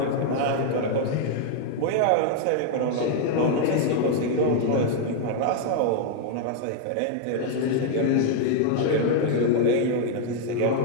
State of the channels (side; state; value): both; different; correlation 0.00